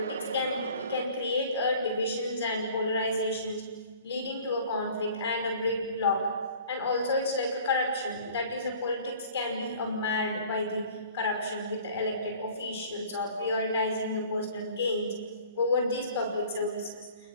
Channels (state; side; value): inverted; both; correlation -0.49